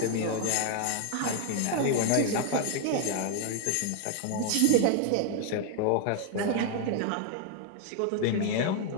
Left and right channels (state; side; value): different; both; correlation 0.00